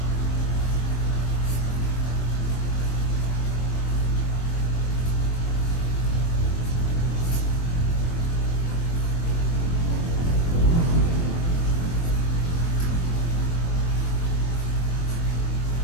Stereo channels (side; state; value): right; late; 24 ms